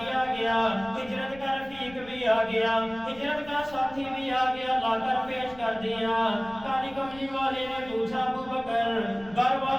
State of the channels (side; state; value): left; noise; rumble, 20 dB below the sound